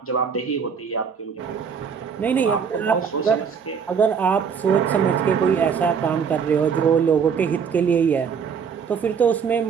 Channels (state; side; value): quieter; left; 6.6 dB